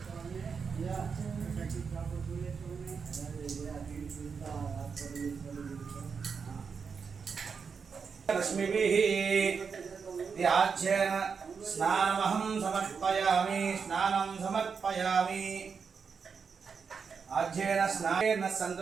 रश्मिभिः त्याज्येन स्नानमहं समर्पयामि। स्नानं समर्पयामि। आज्येन स्नानेन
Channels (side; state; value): left; quieter; 5.8 dB